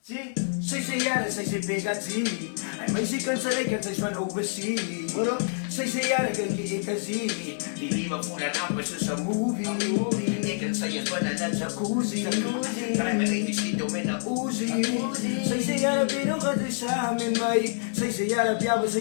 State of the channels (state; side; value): silent; right; digital silence